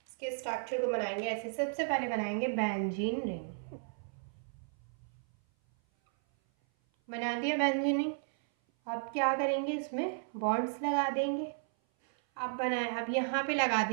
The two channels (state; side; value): silent; left; 55 dB below the other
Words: इसके स्ट्रक्चर को बनाएंगे ऐसे। सबसे पहले बनाएंगे बेंजीन रिंग। बना दिया बेंजीन रिंग। अब क्या करेंगे? इसमें बॉन्ड्स लगा देंगे। अब बनाए, अब यहाँ पे लगा